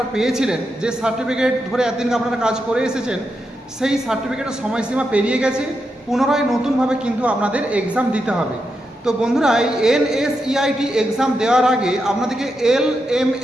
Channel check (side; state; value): both; normal; correlation 0.85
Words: পেয়েছিলেন, যে সার্টিফিকেট ধরে এতদিন আপনারা কাজ করে এসেছেন, সেই সার্টিফিকেটের সময়সীমা পেরিয়ে গেছে। পুনরায় নতুনভাবে কিন্তু আপনাদের এক্সাম দিতে হবে। তো বন্ধুরা, এই NSEIT এক্সাম দেওয়ার আগে আপনাদেরকে